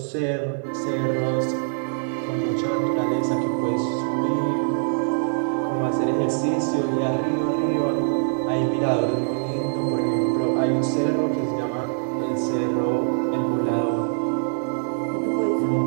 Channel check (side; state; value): left; silent; digital silence